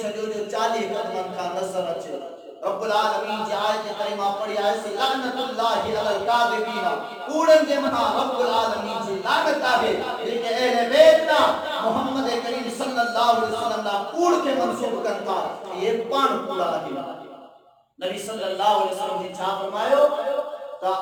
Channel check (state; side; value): identical; both; correlation 1.00